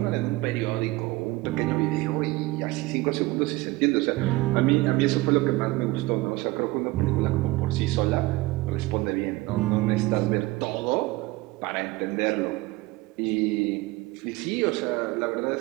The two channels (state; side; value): quieter; left; 20.3 dB